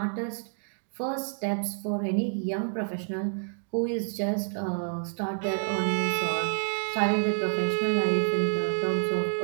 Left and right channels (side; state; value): left; silent; 59 dB below the other